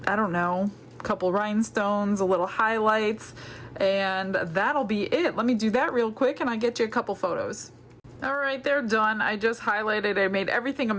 I don't know, a couple rhinestones, a little highlights, and that'll be it. Let me do that real quick and I'll get you a couple photos. All right, they're done. I just highlighted, I made everything a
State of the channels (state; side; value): identical; both; correlation 1.00